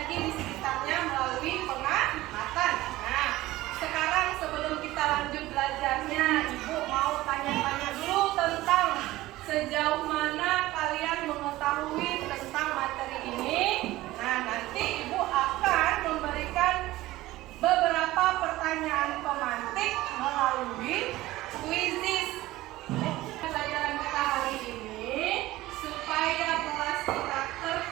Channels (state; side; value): quieter; left; 17.3 dB